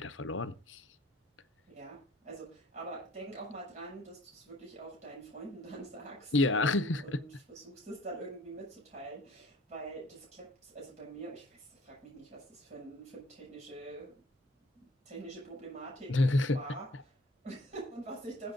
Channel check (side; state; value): both; normal; correlation 0.54